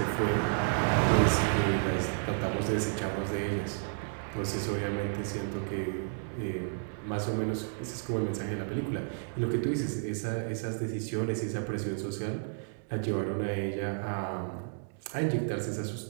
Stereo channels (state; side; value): silent; left; 57 dB below the other